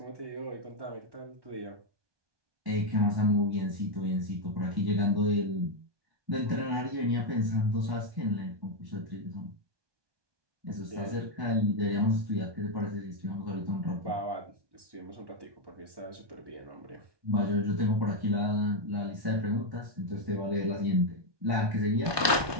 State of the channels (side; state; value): left; late; 1.2 ms